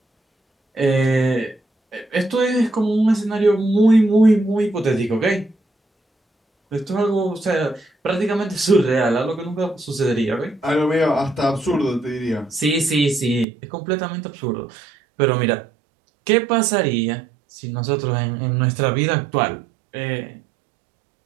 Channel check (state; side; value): drops out; left; at 13.5 s